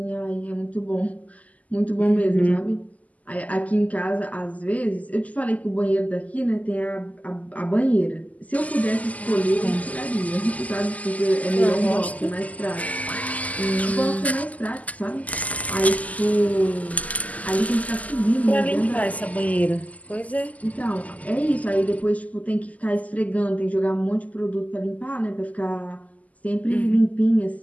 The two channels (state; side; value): late; right; 0.075 ms